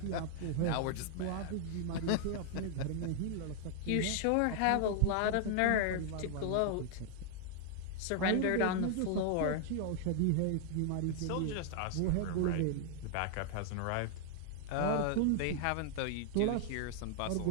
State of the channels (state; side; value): different; both; correlation 0.00